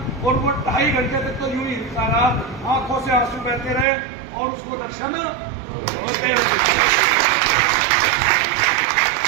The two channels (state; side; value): drops out; left; at 3.9 s